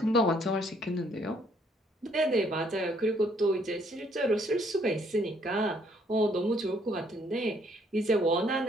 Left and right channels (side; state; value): both; normal; correlation 0.66